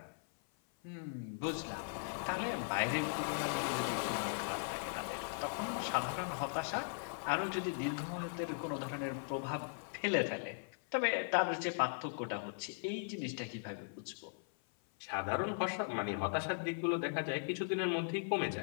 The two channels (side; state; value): right; silent; 52 dB below the other